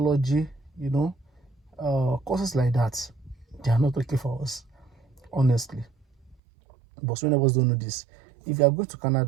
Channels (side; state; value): left; drops out; at 6.4 s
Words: courses like that. They are not okay for us, honestly. But so many of us don't know this. If you are going to